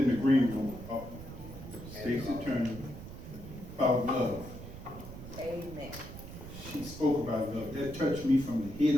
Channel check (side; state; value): right; noise; rumble, 12 dB below the sound